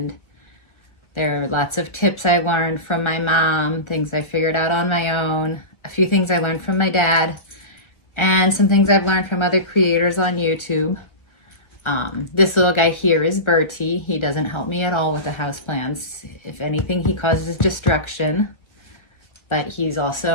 there are lots of tips I learned from my mom, things I figured out on my own, a few things I learned from my dad, and some things I've learned from other creators on YouTube. This little guy here is Bertie. He doesn't help me at all with the houseplants. If anything, he causes destruction, but he's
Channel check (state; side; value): late; right; 1.3 ms